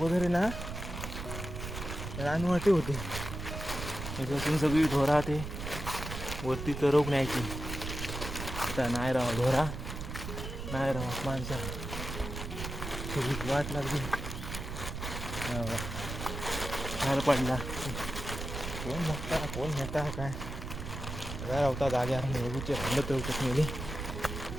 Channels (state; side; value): noise; right; rumble, 7 dB below the sound